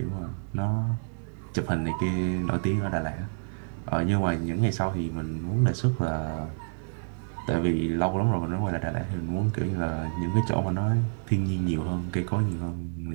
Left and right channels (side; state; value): left; silent; digital silence